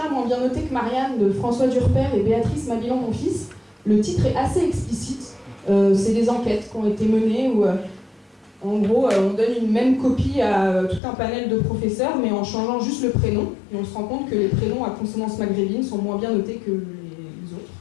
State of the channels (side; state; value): right; drops out; at 11.0 s